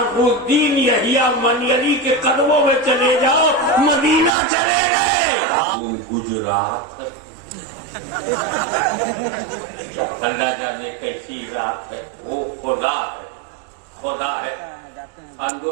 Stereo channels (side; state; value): left; drops out; at 4.3 s